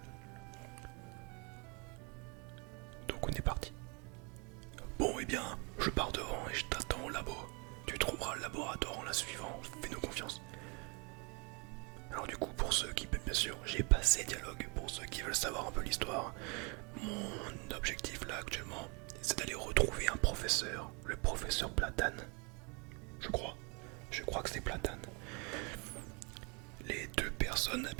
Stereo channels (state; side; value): quieter; left; 31.8 dB